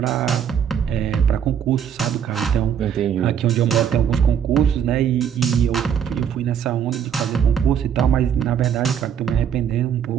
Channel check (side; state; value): left; quieter; 8.5 dB